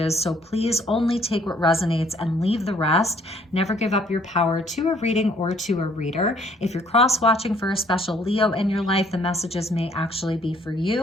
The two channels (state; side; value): normal; both; correlation 0.62